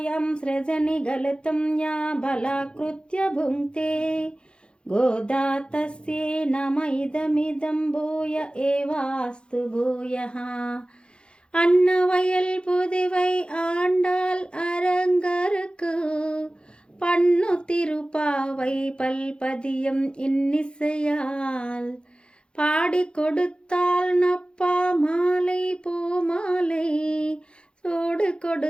సృజని గలితం యా బలాకృత్య భుంక్తే గోదా తస్యే నమ ఇదమిదం భూయ ఏవాస్తు భూయః. அன்னவயல் புதுவை ஆண்டாள் அரங்கருக்கு பண்ணு திருப்பாவை பல்பதியம் இன்னிசையால் பாடி கொடுத்தாள் நப்பா மாலை பூமாலை சூடு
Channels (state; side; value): late; right; 0.054 ms